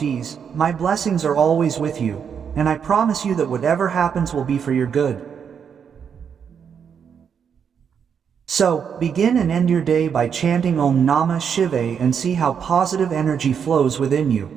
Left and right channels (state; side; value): quieter; left; 7.3 dB